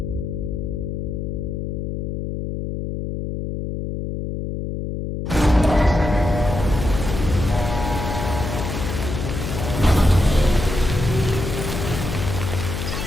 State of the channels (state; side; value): noise; left; hum, 4 dB below the sound